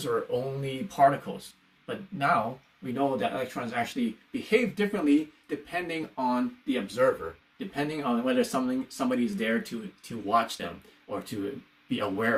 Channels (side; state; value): both; identical; correlation 1.00